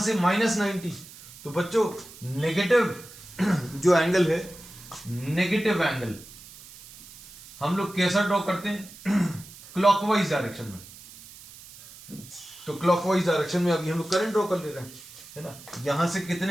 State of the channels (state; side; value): noise; right; hiss, 19 dB below the sound